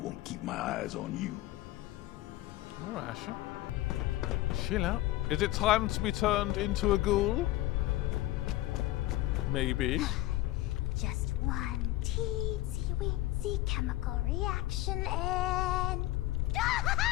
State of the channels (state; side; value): quieter; right; 16.3 dB